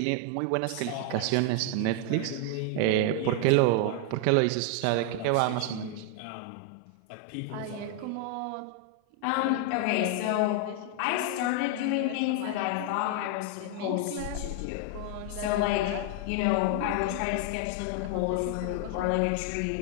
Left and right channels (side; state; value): both; different; correlation 0.00